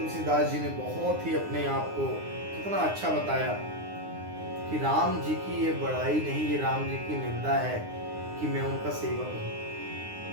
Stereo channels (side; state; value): left; late; 9.7 ms